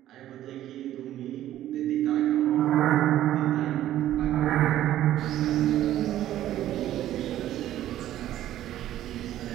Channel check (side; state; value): left; quieter; 12.9 dB